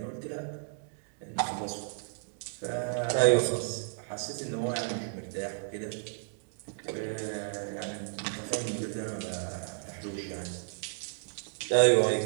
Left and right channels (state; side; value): silent; left; 56 dB below the other